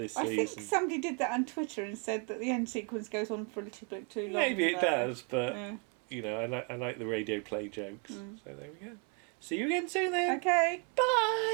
season. I think somebody did that on Twitter and said that the end sequence goes on for a little bit too long. Maybe it does, but, you know, I like the radio play jokes. So there we go. See you again soon then. Okay. Bye.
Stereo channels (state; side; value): quieter; left; 36.6 dB